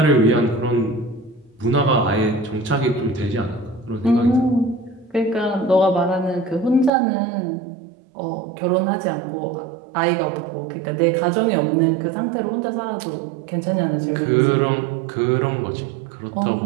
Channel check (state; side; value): drops out; left; at 6.9 s